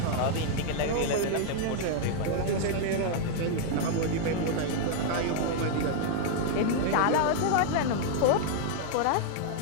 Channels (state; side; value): different; both; correlation 0.00